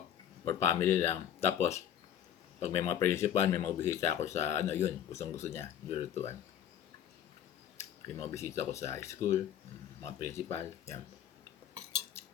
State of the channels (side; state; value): right; quieter; 10.0 dB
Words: for family lang. Tapos, pag may mga principal, may mga bisita ako sa ano yun, gustong-gusto niya, lulutuan. May mga bisita ko sa high school, mga principal, yan.